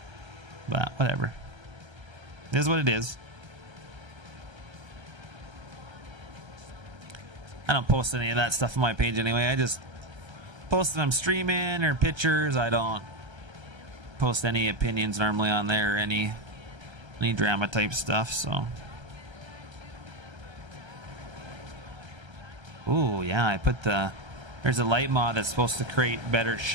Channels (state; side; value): late; left; 1.3 ms